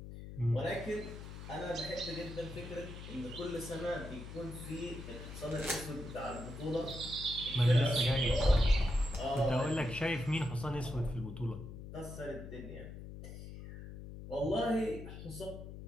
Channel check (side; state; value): left; noise; hum, 11 dB below the sound